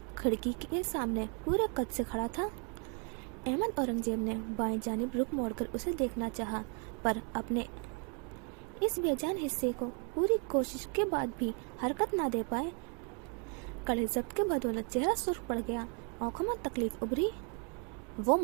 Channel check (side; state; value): left; quieter; 38.3 dB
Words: खिड़की के सामने पूरे कद से खड़ा था। अहमद औरंगजेब ने बाएं जानिब रुख मोड़कर उसे देखना चाहा, पर अपने इस बेजान हिस्से को पूरी कोशिश के बाद भी हरकत ना दे पाए। कड़े जब्त के बदौलत चेहरा सुर्ख पड़ गया। आंखों में तकलीफ उभरी। वो